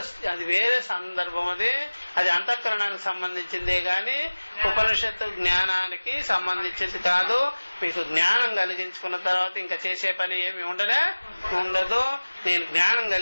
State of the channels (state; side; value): inverted; both; correlation -1.00